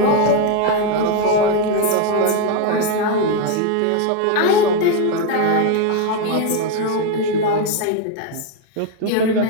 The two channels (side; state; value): both; different; correlation 0.02